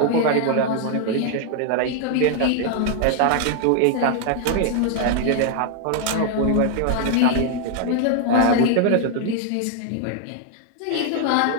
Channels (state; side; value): different; both; correlation 0.00